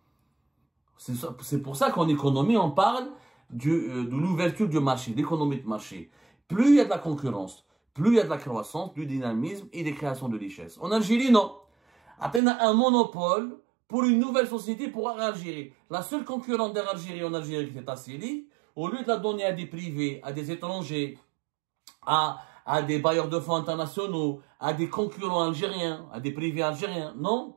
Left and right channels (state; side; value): drops out; left; at 12.4 s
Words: C'est pour ça qu'en économie, on parle de l'ouverture du marché, l'économie de marché. Plus il y a de la concurrence, plus il y a de la croissance, du dynamisme et des créations de richesses. En Algérie, non. On a un monopole pour une nouvelle société pour Air Algérie. La seule concurrente d'Air Algérie en Algérie, qui est Tassili, au lieu de la donner à des privés, à des étrangers, à des bailleurs de fonds internationaux, à des concurrents algériens, à des privés algériens, non,